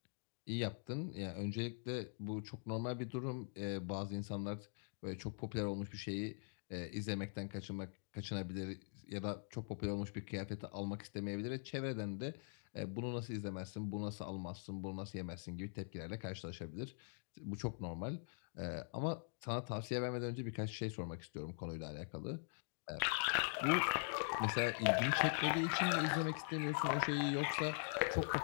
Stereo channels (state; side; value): silent; right; digital silence